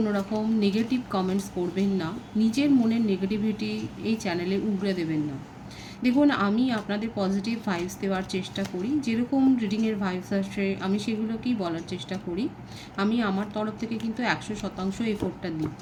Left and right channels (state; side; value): identical; both; correlation 1.00